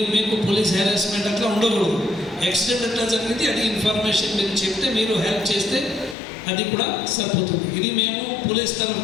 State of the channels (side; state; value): right; drops out; at 6.2 s